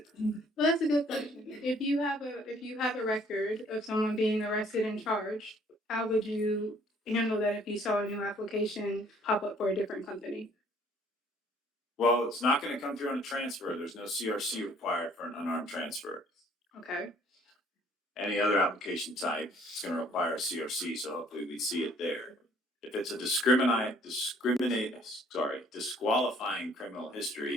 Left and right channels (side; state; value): both; normal; correlation 0.59